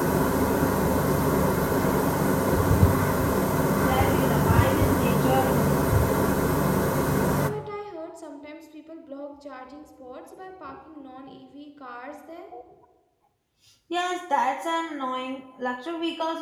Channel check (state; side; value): identical; both; correlation 1.00